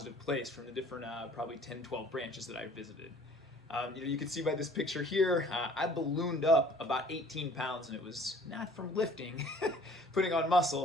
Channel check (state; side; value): normal; both; correlation 0.53